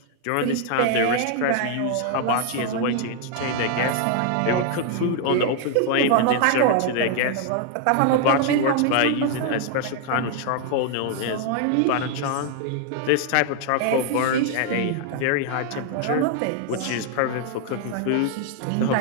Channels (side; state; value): both; different; correlation 0.00